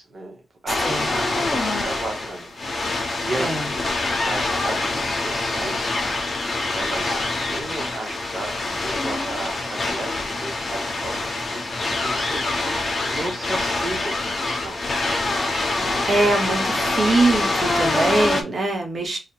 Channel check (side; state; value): both; normal; correlation 0.87